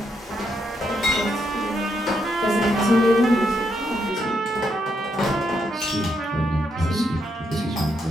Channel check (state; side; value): normal; both; correlation 0.78